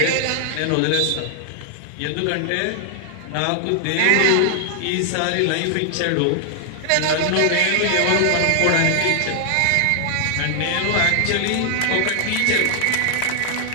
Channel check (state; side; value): different; both; correlation 0.00